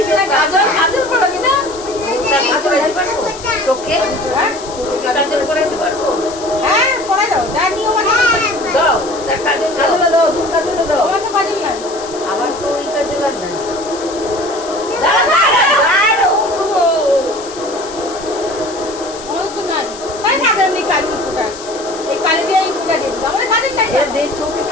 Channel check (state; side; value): noise; left; hiss, 15 dB below the sound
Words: না কাজল পড়াবি না কাজল দিতে পারবো চোখে কাজল পড়াইতে পারবো হ্যাঁ পড়া দাও যা নিয়ম আছে দাও কাজল দাও তুমি কাজল দাও আমার তো কাজল নাই আমার তো ওই কাজল আর নাই চোখে